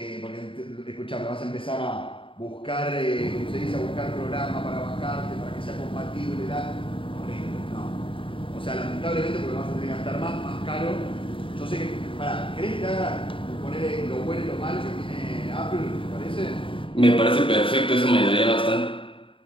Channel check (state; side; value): late; right; 0.25 ms